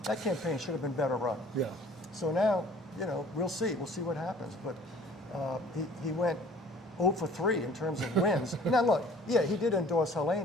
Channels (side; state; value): both; normal; correlation 0.51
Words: that campaign should have been better run. Yeah. So now, we'll see what happens. But he went 0 for 3 in terms of wins. Now look, he did endorse